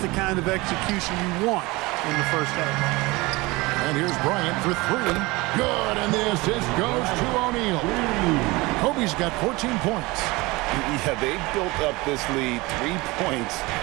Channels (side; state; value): left; quieter; 22.7 dB